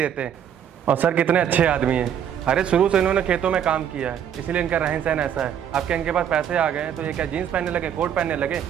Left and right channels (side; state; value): left; quieter; 9.1 dB